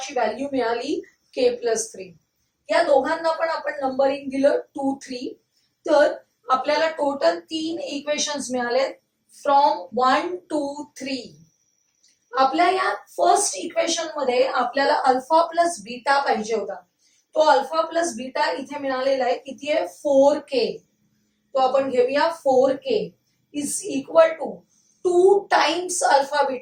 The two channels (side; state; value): both; identical; correlation 1.00